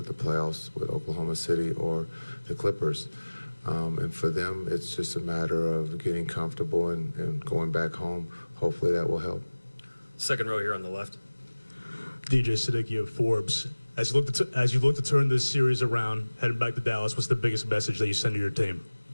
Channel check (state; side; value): inverted; both; correlation -1.00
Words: playoffs with Oklahoma City or the Clippers. And for them, it's just a matter of getting comfortable and going back home. Hopefully that will help. Second row here on the left. DJ Siddiqui of Forbes. As you look to turn this series around, heading back to Dallas, what's the biggest message that you send to your team?